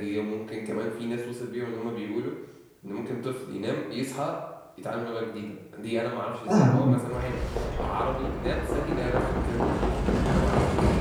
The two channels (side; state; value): both; identical; correlation 1.00